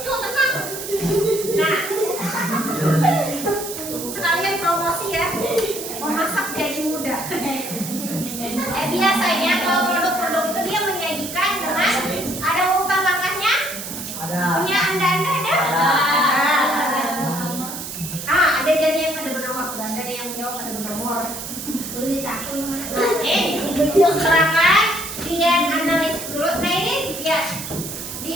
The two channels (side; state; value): right; noise; hiss, 8 dB below the sound